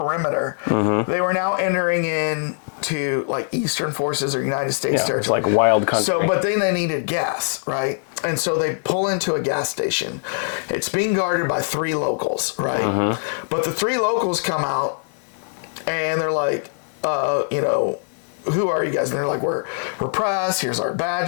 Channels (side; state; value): right; silent; 64 dB below the other